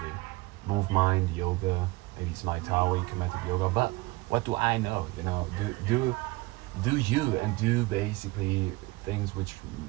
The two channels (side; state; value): left; quieter; 22.2 dB